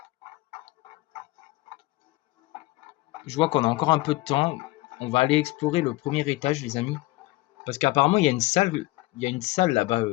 Je vois qu'on a encore un peu de temps. On va aller explorer le premier étage, les amis. Parce qu'apparemment, il y a une salle là-bas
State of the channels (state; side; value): quieter; right; 20.0 dB